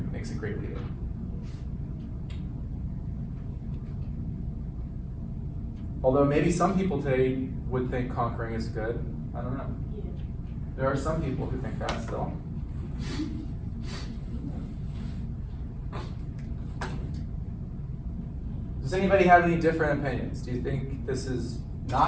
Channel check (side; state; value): both; identical; correlation 1.00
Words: makes a great leader. Although maybe some people today would think conquering is good. I don't know. There are some people who think that still. Does anybody have any different opinions? Do you think this is